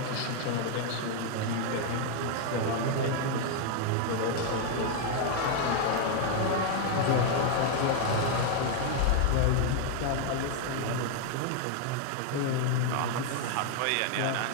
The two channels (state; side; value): different; both; correlation 0.00